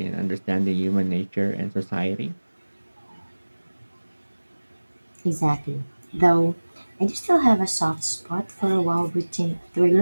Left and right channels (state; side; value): inverted; both; correlation -1.00